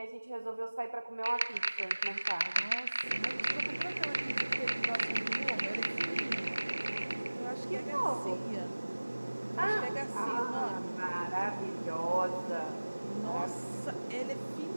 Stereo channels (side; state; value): both; inverted; correlation -1.00